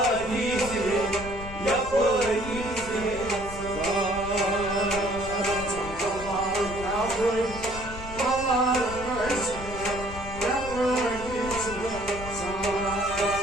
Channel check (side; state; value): left; noise; rumble, 11 dB below the sound